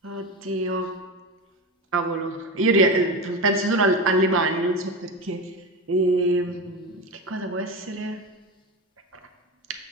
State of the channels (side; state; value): both; normal; correlation 0.22